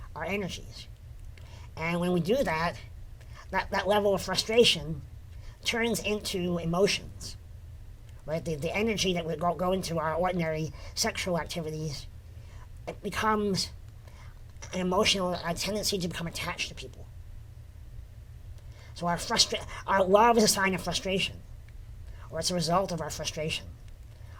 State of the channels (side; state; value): both; identical; correlation 1.00